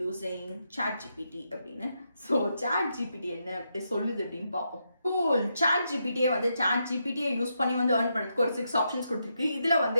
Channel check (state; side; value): inverted; both; correlation -0.82